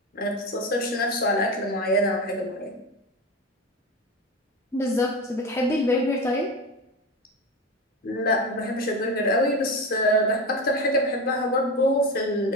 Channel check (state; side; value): normal; both; correlation 0.22